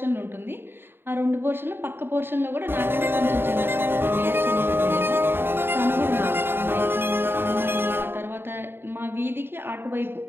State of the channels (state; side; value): late; left; 0.11 ms